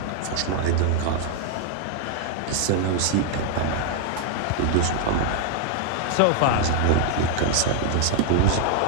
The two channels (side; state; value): both; different; correlation 0.00